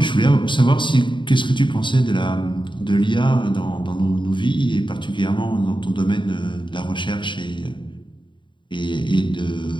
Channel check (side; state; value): right; late; 0.23 ms